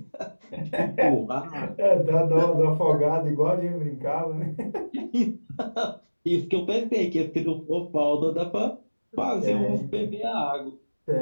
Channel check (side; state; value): both; inverted; correlation -1.00